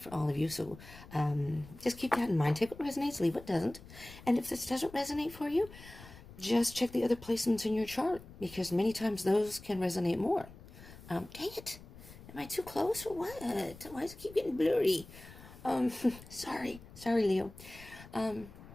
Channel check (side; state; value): left; noise; rumble, 18 dB below the sound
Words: for all of you, so just keep that in mind. Take what resonates, leave what doesn't. And if this doesn't resonate for you, just check the other placements in your chart, because many times those can resonate more. Dang it. Am I too close or what? Why does it keep getting blurry? Sorry, Leo.